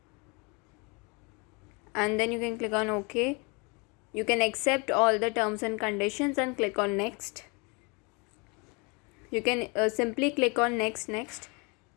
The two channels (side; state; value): right; quieter; 30.3 dB